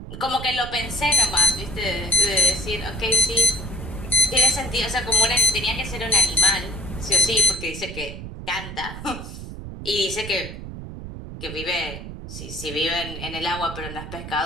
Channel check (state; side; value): noise; right; rumble, 10 dB below the sound